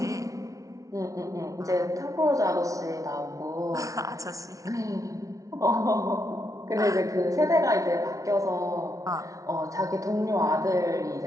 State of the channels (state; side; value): late; left; 0.17 ms